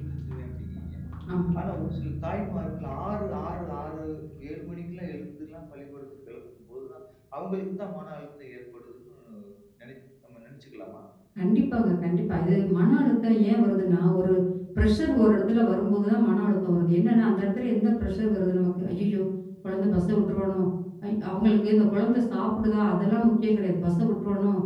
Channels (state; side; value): identical; both; correlation 1.00